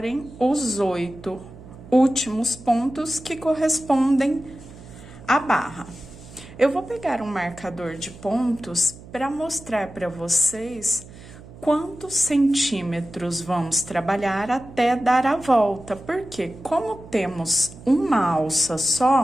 os 8 últimos pontos que correspondem à barra. Eu vou pegar um marcador de pontos para mostrar para vocês quantos centímetros vamos trabalhar até dar a volta, porque como temos uma alça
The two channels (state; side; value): noise; right; hum, 18 dB below the sound